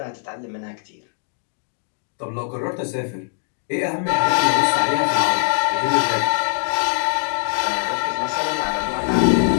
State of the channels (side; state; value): right; silent; digital silence